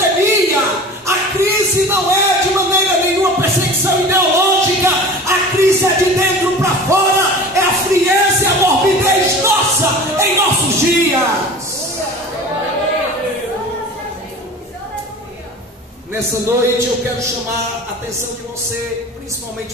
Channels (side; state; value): both; normal; correlation 0.37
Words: a crise não é de maneira nenhuma perseguição ideológica, a crise é de dentro para fora, é a frieza e a morbidez nossa em nossos dias. Nessa noite eu quero chamar a atenção de você, principalmente